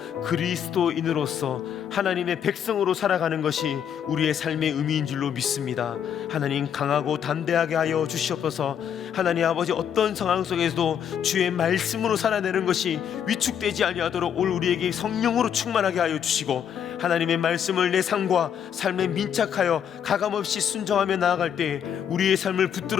그리스도인으로서 하나님의 백성으로 살아가는 것이 우리의 삶의 의미인 줄로 믿습니다. 하나님, 강하고 담대하게 하여 주시옵소서. 하나님 아버지, 어떤 상황 속에서도 주의 말씀으로 살아내는 것이 위축되지 아니하도록 오늘 우리에게 성령으로 충만하게 하여 주시고 하나님의 말씀을 내 삶과 삶에 민착하여 가감없이 순종하며 나아갈 때 우리의 삶을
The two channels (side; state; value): right; quieter; 8.6 dB